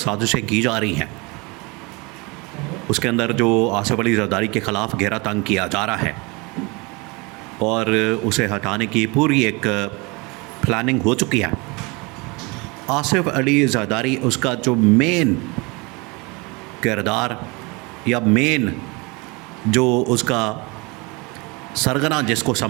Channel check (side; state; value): left; quieter; 27.3 dB